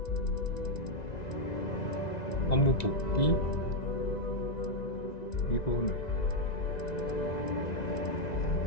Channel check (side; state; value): right; late; 1.9 ms